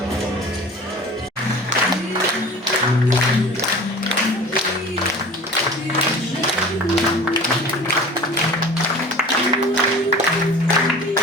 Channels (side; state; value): both; normal; correlation 0.40